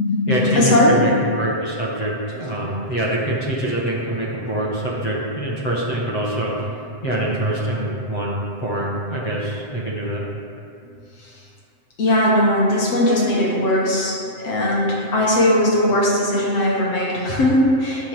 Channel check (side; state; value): right; late; 7.8 ms